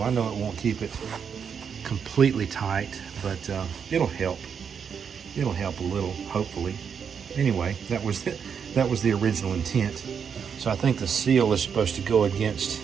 I know it won't keep it completely tight, but it'll help. It'll help a little, hopefully. Anyway, that was the original intent. So I think the seal is supposed to go against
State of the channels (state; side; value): quieter; left; 7.0 dB